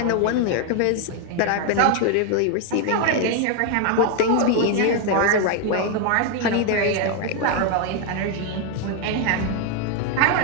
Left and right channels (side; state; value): both; different; correlation 0.01